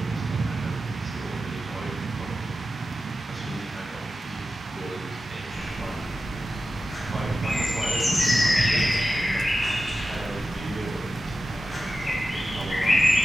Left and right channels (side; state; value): both; normal; correlation 0.92